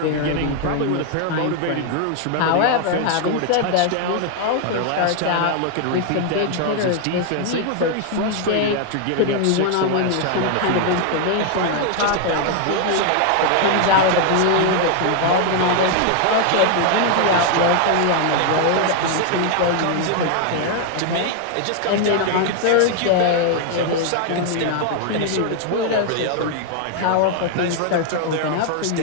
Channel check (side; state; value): both; different; correlation 0.00